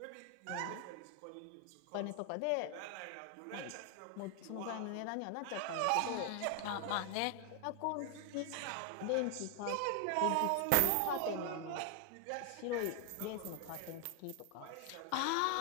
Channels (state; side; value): different; both; correlation 0.00